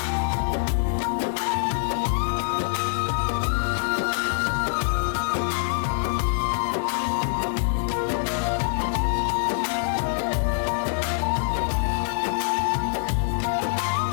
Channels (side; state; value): right; silent; 62 dB below the other